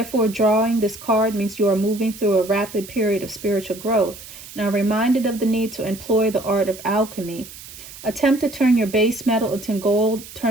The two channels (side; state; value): right; noise; hiss, 16 dB below the sound